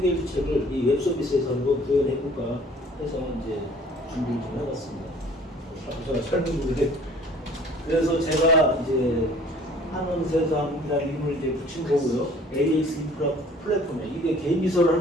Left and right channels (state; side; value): normal; both; correlation 0.52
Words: 이 웹서비스에서 한번 구현해볼까 해서 이제 준비를 좀 해봤습니다. 제가 설명드리게 그래서 제가 이제 한원세상이라는 이름을 이제 붙인 거고요. AX 인프라 플랫폼에 이게 개인 비서를